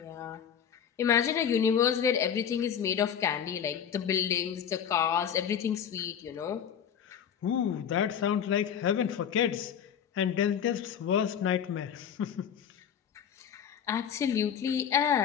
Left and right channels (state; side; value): quieter; right; 8.4 dB